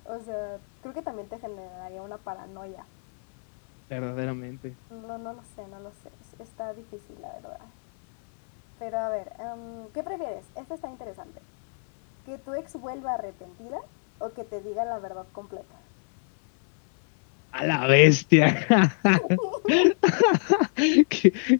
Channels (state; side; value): silent; right; 61 dB below the other